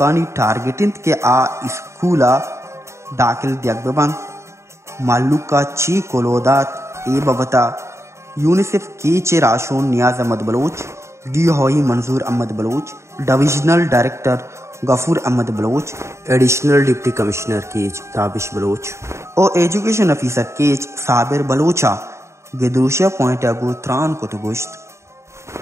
ٹارگیٹنت کے آ اسکولا داخل دیگ ببن مالوکا چی کولودات ای ببتا یونیسیف کیچے راشون نیاز احمد بلوچ ڈی ہوئی Manzoor Ahmed Baloch divisional director Ghafoor Ahmed Baloch additional deputy commissioner Kech Tabish Baloch او ایجوکیشن افیسر کیچ صابر بلوچا گدروشیا پوائنٹ اگو تران کو تو گوشت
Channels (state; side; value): late; left; 0.14 ms